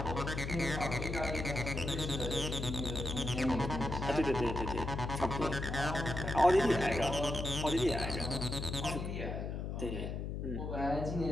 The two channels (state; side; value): noise; left; hum, 4 dB below the sound